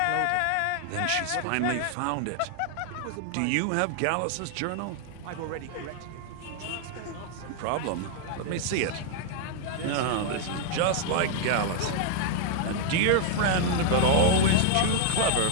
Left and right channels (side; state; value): both; different; correlation 0.00